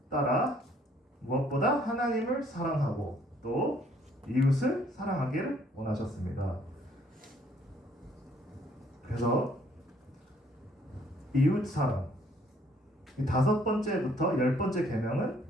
따라 무엇보다 하나님을 사랑하고 또 이웃을 사랑하기를 원하셨습니다. 그래서 이웃 사랑, 이 5번째부터 10번째 계명은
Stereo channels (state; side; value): normal; both; correlation 0.63